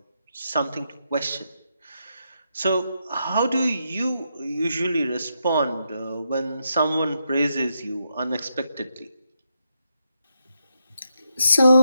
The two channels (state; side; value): inverted; both; correlation -0.82